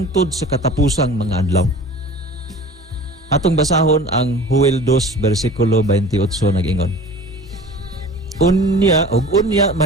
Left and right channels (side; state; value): both; normal; correlation 0.41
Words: sa katapusang mga adlaw. Atong basahon ang Joel 2 versikulo 28 nag-ingon. Unya